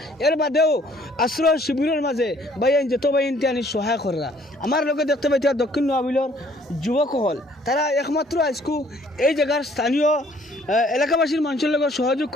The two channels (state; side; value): normal; both; correlation 0.60